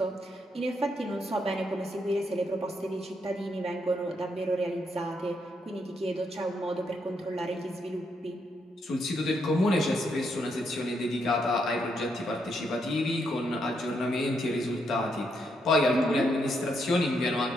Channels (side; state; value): both; normal; correlation 0.78